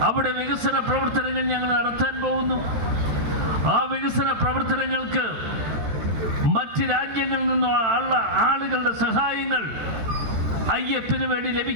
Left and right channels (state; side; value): late; left; 13 ms